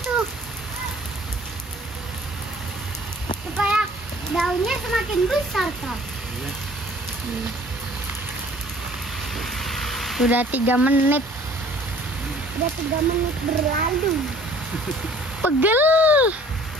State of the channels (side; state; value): both; normal; correlation 0.53